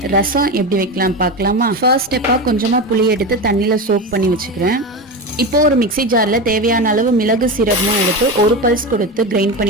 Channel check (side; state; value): both; normal; correlation 0.21